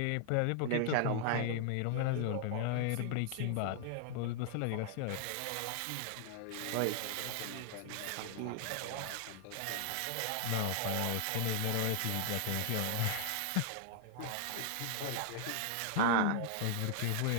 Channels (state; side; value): different; both; correlation 0.00